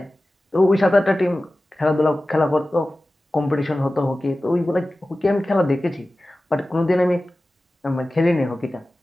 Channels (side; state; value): both; normal; correlation 0.96